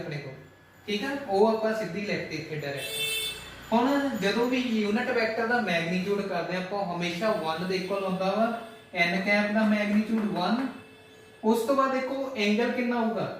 ਕੋਲ। ਠੀਕ ਹੈ ਉਹ ਆਪਾਂ ਸਿੱਧੀ ਲਿਖਤੇ ਇੱਥੇ ਡਾਇਰੈਕਟ। ਹੁਣ ਜਦੋਂ ਵੀ ਯੂਨਿਟ ਵੈਕਟਰ ਦਾ ਮੈਗਨੀਟਿਊਡ ਕਰਦੇ ਆਪਾਂ ਹਮੇਸ਼ਾ 1 ਦੇ ਇਕੁਅਲ ਹੁੰਦਾ ਵਾ n ਕੈਪ ਦਾ ਮੈਗਨੀਟਿਊਡ 1। ਉਸ ਤੋਂ ਬਾਅਦ ਦੇਖੋ ਐਂਗਲ ਕਿੰਨਾ ਹੋਊਗਾ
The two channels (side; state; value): both; identical; correlation 1.00